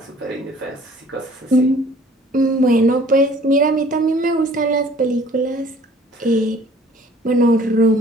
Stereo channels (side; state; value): both; normal; correlation 0.54